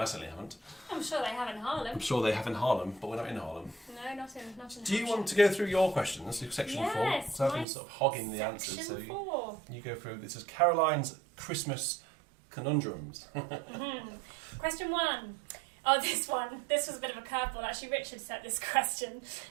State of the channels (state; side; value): drops out; left; at 7.7 s